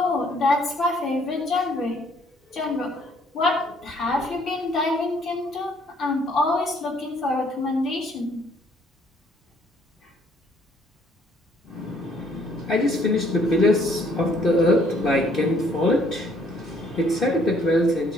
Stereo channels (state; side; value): normal; both; correlation 0.63